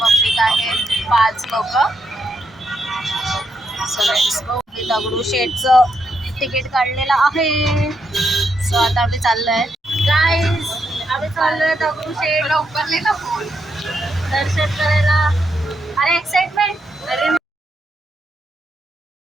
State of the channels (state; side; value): normal; both; correlation 0.80